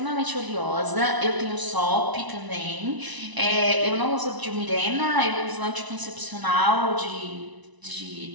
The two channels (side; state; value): left; late; 1.0 ms